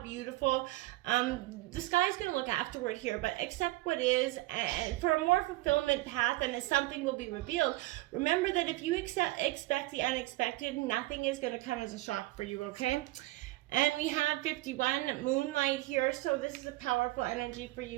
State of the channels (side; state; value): left; quieter; 19.0 dB